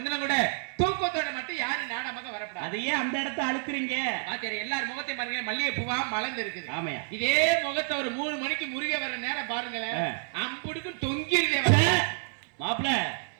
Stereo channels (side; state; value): left; silent; 58 dB below the other